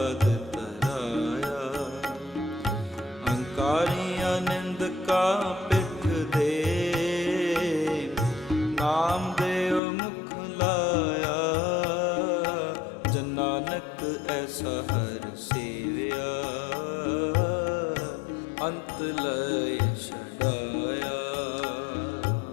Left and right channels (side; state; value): right; drops out; at 9.8 s